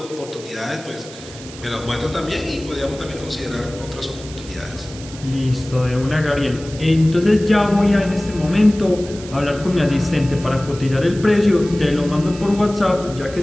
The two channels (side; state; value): right; noise; hiss, 16 dB below the sound